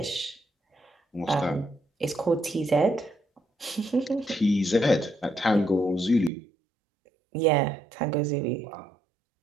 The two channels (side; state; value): left; drops out; at 6.3 s